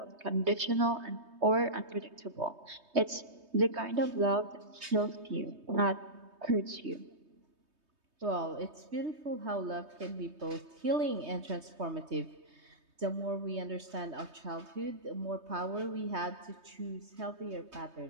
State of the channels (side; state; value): left; late; 3.2 ms